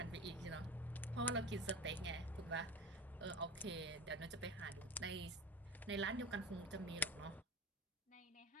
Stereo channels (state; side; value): normal; both; correlation 0.31